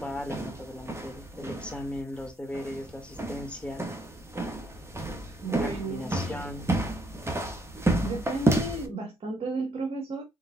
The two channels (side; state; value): both; normal; correlation 0.72